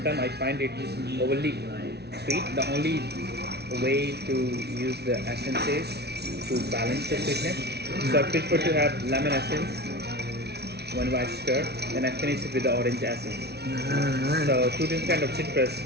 I find it overly sweet. The only way to use the essence is to balance the sweetness. So I prefer to have lemon essence when I stir, then I finish it with the orange essence. Alright. So two different kind of citrus.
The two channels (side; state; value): left; late; 0.49 ms